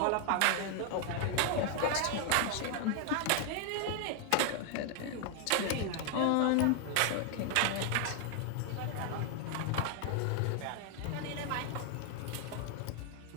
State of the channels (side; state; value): both; different; correlation 0.00